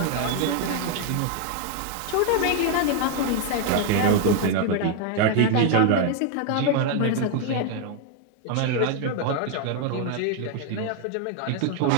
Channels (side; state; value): both; different; correlation 0.00